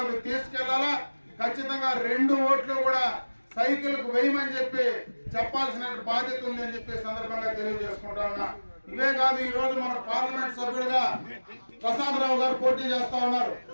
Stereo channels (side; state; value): both; inverted; correlation -1.00